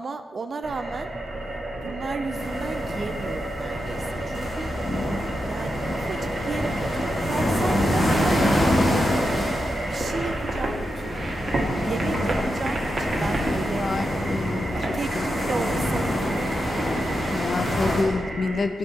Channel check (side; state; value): both; normal; correlation 0.87